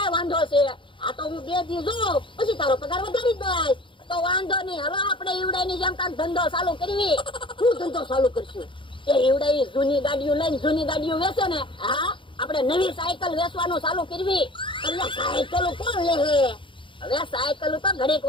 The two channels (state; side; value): late; right; 0.24 ms